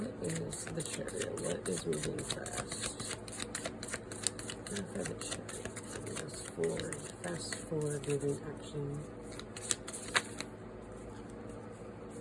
is the Chariot? What is moving fast? Clarify the Chariot. Fast forward. Fast forward moving action.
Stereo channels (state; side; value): identical; both; correlation 1.00